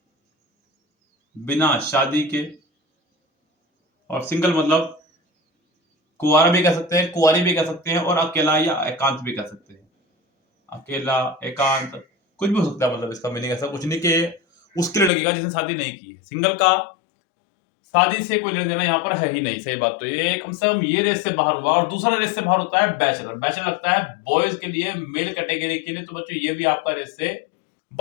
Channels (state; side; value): drops out; right; at 15.1 s